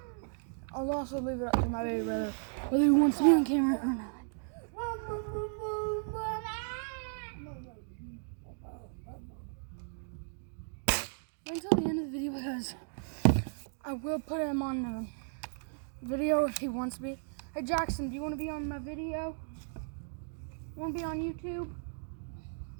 I'll also leave it up to my baby brother whether he wants to be on camera or not. till the end of the video because I will put him on the video if he wants to be. Hey Jackson, do you want to be on my video? Want to be on YouTube?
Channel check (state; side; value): silent; left; digital silence